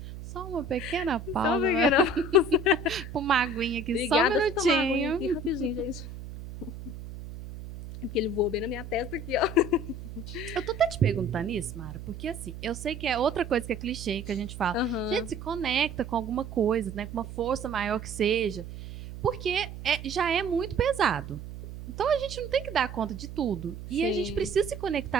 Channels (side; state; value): right; noise; hum, 11 dB below the sound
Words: Só uma pequena pausa. Só uma pequena pausa. Uma aguinha aqui, Obrigada, só um minutinho. Aqui, rapidinho, gente. É porque ele voou bem na minha testa aqui, ó. Eu tô até te perguntando isso, Mara, porque assim, eu sei que é outra coisa que é clichê, que a gente fala. Gente, se conecta com alguma coisa, né? Com uma força maior que seja. Porque já é muito pesado. Então a gente não tem que dar conta de tudo. E Sim. A gente precisa se